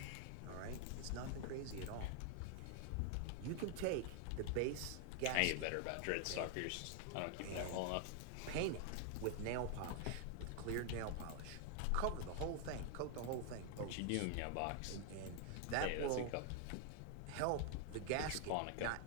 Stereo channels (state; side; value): different; both; correlation 0.00